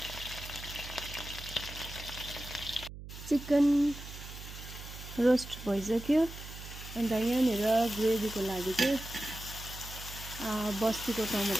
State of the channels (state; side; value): noise; right; hum, 12 dB below the sound